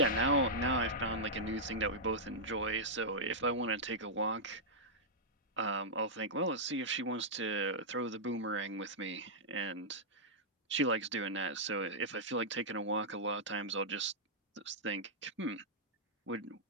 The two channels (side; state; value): both; normal; correlation -0.10